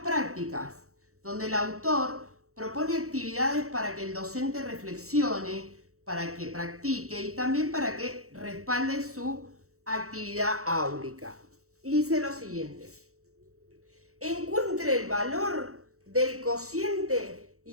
prácticas, donde el autor propone actividades para que el docente reflexione, para que practique y también para que respalde su actividad áulica. Y dice lo siguiente: encuentre el valor del cociente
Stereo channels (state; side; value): late; left; 0.64 ms